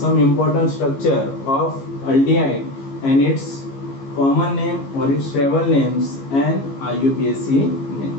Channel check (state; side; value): late; right; 15 ms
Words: important structure of aldehyde and its common name or its travel names and IUPAC